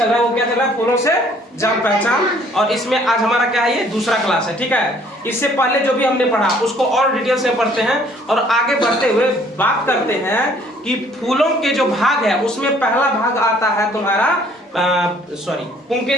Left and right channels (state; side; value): normal; both; correlation 0.59